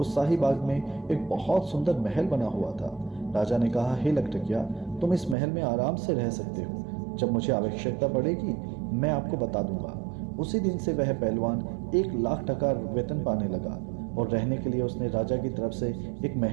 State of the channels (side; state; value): left; drops out; at 5.4 s